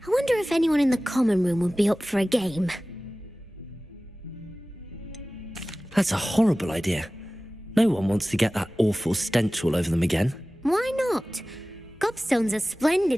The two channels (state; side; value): normal; both; correlation 0.97